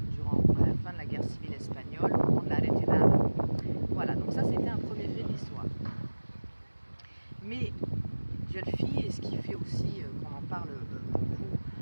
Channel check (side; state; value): both; inverted; correlation -1.00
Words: durant la fin de la guerre civile espagnole, au moment de la retirada. Voilà, donc ça c'était un premier fait de l'histoire. Mais Dieulefit, et ce qui fait aussi qu'on en parle beaucoup